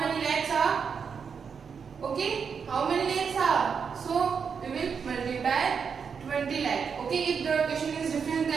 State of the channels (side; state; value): left; quieter; 6.3 dB